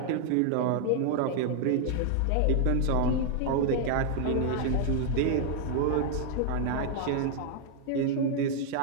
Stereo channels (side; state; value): both; different; correlation 0.00